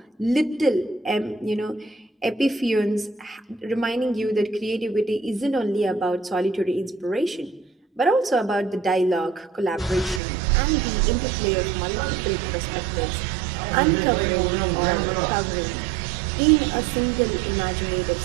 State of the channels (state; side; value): drops out; left; at 10.2 s